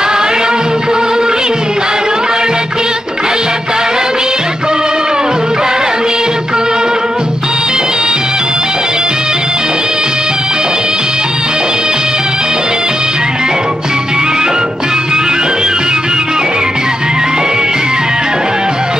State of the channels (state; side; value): normal; both; correlation 0.86